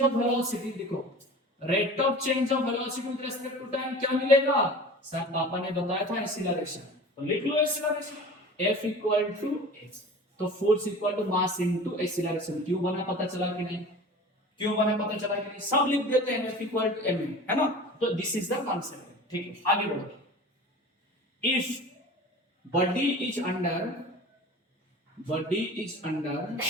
of velocity, देखो rate of change of velocity with respect to time क्या मिलेगा सर, पापा ने बताया था एक्सीलरेशन, तो लिख लो acceleration f equal to h, तो force equal to mass into acceleration, क्यों बना पता चला कि नहीं, क्यों बना पता चला कि नहीं, सब लिख देते हैं f इक्वल टू m, है ना। तो दिस इज द कॉन्सेप्ट, ठीक है। आगे बढ़ो, if body is under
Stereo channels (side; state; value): both; normal; correlation 0.39